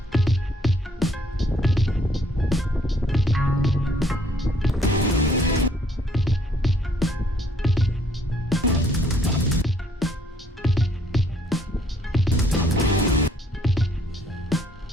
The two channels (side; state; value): both; normal; correlation 0.65